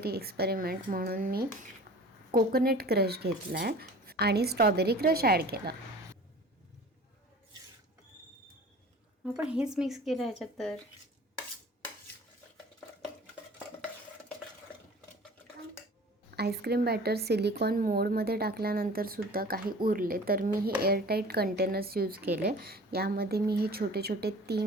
एक्सपेरिमेंट म्हणून मी कोकोनट क्रश घेतला आहे आणि स्ट्रॉबेरी क्रश ॲड केला. आपण हेच मिक्स केलं ह्याच्यात. तर आईस्क्रीम बॅटर सिलिकॉन मोडमध्ये टाकल्यानंतरसुद्धा काही उरले तर मी हे एअरटाईट कंटेनर्स यूज केले. यामध्ये मी हे छोटे छोटे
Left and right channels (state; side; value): normal; both; correlation 0.43